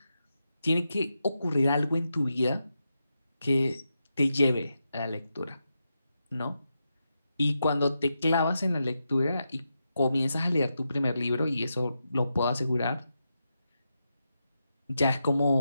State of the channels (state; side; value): inverted; both; correlation -0.87